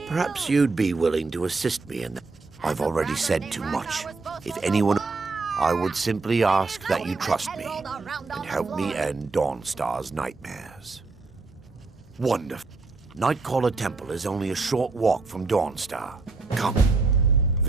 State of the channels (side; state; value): left; quieter; 3.9 dB